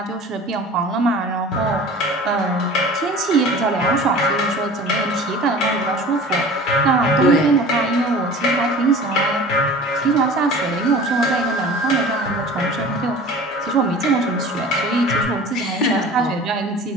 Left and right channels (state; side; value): normal; both; correlation 0.41